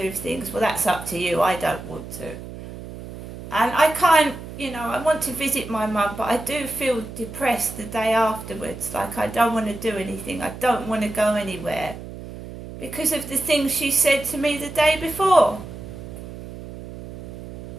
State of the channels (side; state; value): right; noise; hum, 12 dB below the sound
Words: things. Well, that's up to you. I don't want to. And I can't, I want to visit my mum, but I do feel depressed the day afterwards. Like I don't want to do anything. I don't want to go anywhere because of the things she said to me the day before.